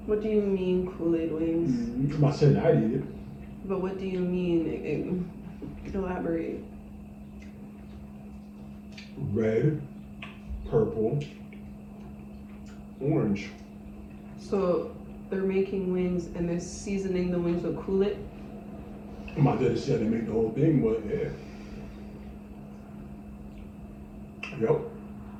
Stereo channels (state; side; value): identical; both; correlation 1.00